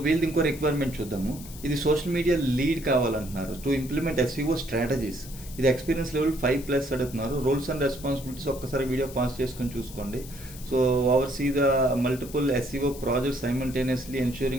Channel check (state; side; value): noise; left; hiss, 16 dB below the sound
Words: వీళ్ళది ఇంకో రిక్వైర్మెంట్ చూద్దాము. ఇది సోషల్ మీడియా లీడ్ కావాలంటున్నారు టు ఇంప్లిమెంట్ ఎస్ఈఓ స్ట్రాటజీస్. ఇది ఎక్స్పీరియన్స్ లెవెల్ 5+ అడుగుతున్నారు. రోల్స్ అండ్ రెస్పాన్సిబిలిటీస్ ఒక్కసారి వీడియో పాస్ చేసుకొని చూసుకోండి. So oversee the multiple SEO projects simultaneously